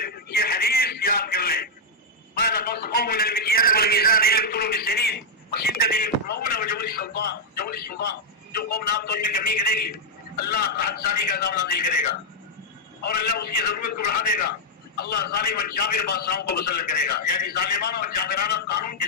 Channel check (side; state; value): both; normal; correlation -0.03